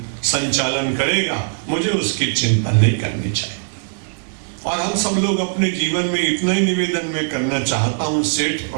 संचालन करेगा, मुझे उसकी चिंता नहीं करनी चाहिए। और हम सब लोग अपने जीवन में इतना ही निवेदन में करना चाहता हूं, सेठ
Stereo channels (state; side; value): silent; left; digital silence